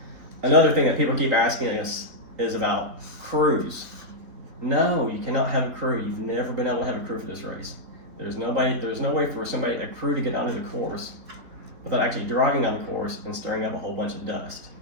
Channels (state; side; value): late; left; 4.0 ms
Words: Another thing that people keep asking us is about crews. No, you cannot have a crew. You've never been able to have a crew for this race. There's no way for a crew to get onto the course without actually driving on the course and stirring up a whole bunch of dust.